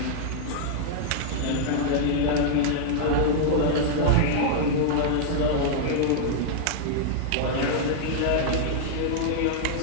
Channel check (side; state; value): both; different; correlation -0.01